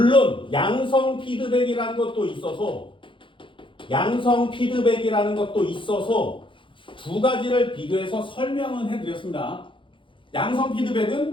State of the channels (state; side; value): late; right; 0.25 ms